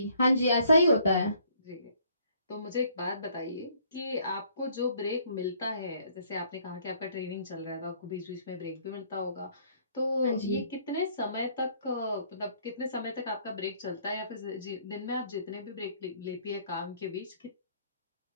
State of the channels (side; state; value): both; inverted; correlation -0.62